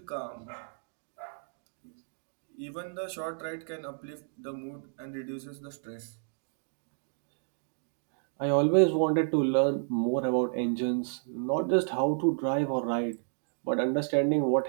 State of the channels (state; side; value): silent; left; digital silence